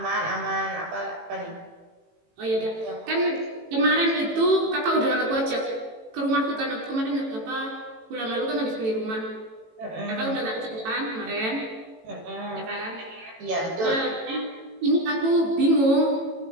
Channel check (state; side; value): late; left; 18 ms